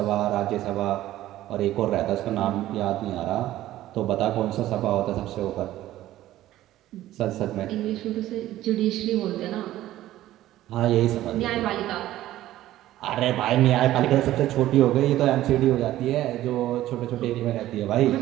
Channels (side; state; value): left; quieter; 14.4 dB